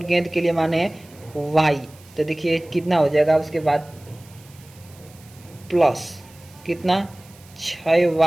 गेंद के लिए मान है y, तो देखिए कितना हो जाएगा, उसके बाद प्लस कितना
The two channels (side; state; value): right; noise; hiss, 25 dB below the sound